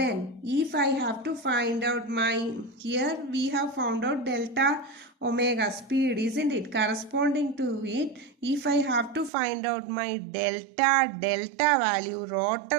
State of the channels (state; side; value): drops out; left; at 9.3 s